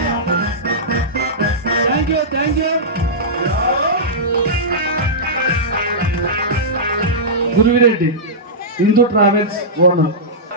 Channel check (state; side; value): normal; both; correlation -0.15